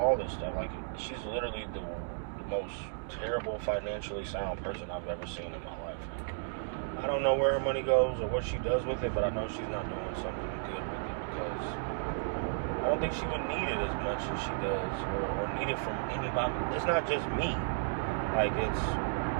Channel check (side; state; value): left; silent; digital silence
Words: this stuff. Like she's literally the most terrible financially sound person I've ever seen in my life. I don't know where her money goes or what she does with it, but I know she's not doing something good with it, because I don't think she would need it as much as she does, or need it from anybody. It's not just me. Like, it's